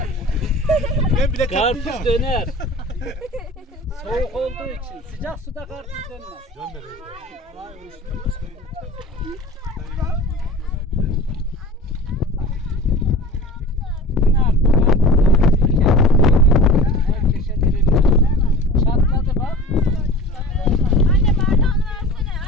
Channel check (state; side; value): normal; both; correlation 0.37